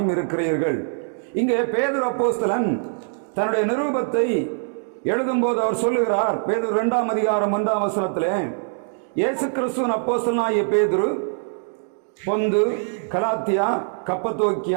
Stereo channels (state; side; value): silent; left; digital silence